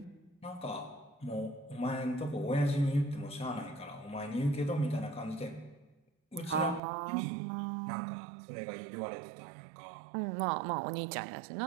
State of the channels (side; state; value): left; drops out; at 6.8 s